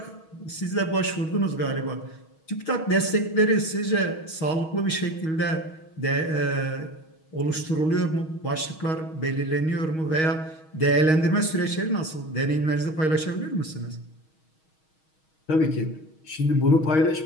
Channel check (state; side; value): late; right; 6.3 ms